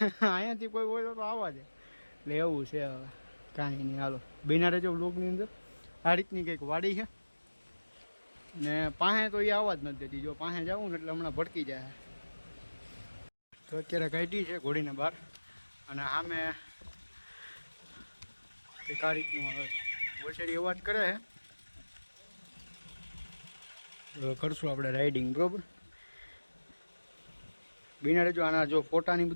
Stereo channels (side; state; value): both; inverted; correlation -1.00